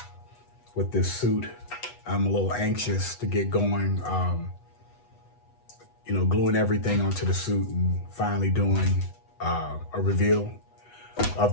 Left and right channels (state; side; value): late; right; 8.1 ms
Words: this suit. I'm a little anxious to get going, you know, gluing everything onto the suit and finally doing a reveal of